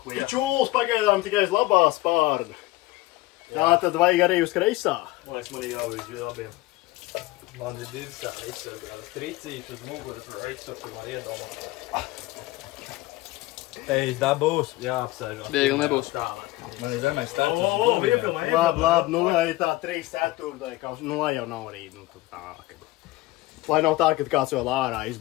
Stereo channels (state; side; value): quieter; right; 18.7 dB